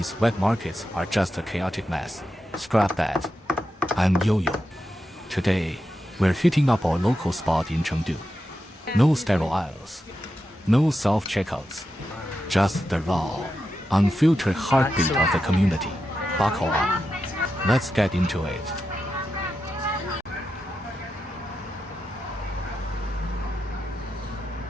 wet markets are just a chaotic mess. Scrap that. I'm Yo-Yo. Today, we're hitting up our local spot in Chengdu. No sterile aisles, no self-checkouts, just the raw, unfiltered heartbeat of the community. Buckle up. Let's get into it.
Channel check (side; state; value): both; normal; correlation 0.88